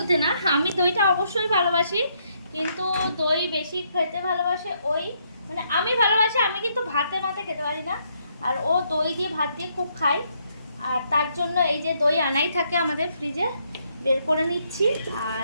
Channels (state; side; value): inverted; both; correlation -0.73